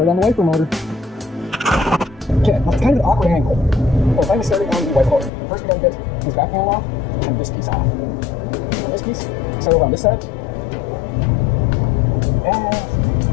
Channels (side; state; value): right; drops out; at 5.3 s